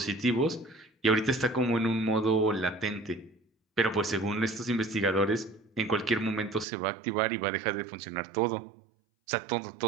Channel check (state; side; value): drops out; left; at 6.7 s